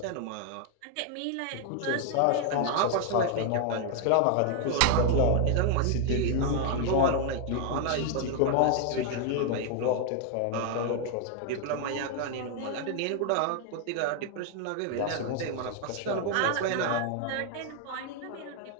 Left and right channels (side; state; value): both; different; correlation 0.00